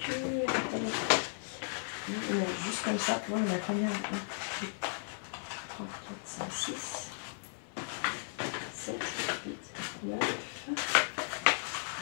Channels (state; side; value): silent; right; 54 dB below the other